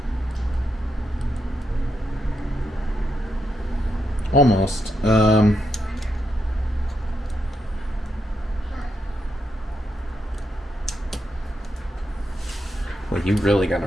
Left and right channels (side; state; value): both; normal; correlation 0.83